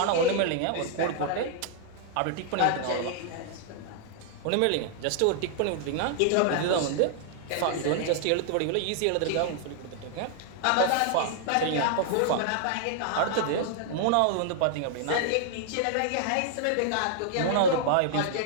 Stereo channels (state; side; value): different; both; correlation -0.01